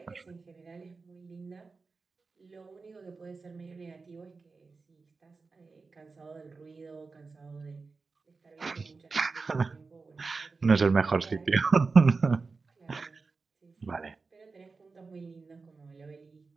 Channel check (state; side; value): quieter; left; 4.2 dB